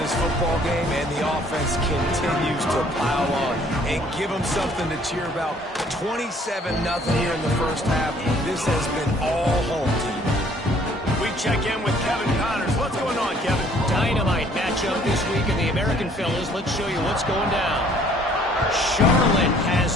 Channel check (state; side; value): normal; both; correlation 0.59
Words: this football game, and the offense continues to pile on and give them something to cheer about. 27-0 here in the first half. This has been all home team. We check in with Kevin Connors. What's going on, Kevin? Dynamite matchup this week in the American Fellas. Let's show you what's going down. Charlotte has